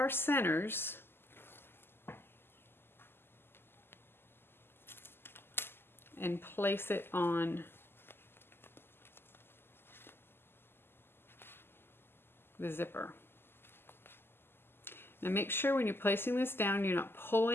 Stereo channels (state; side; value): late; right; 0.11 ms